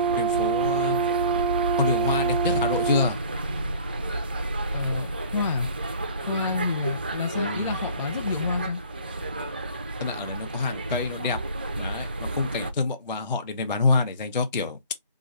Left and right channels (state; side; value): inverted; both; correlation -0.48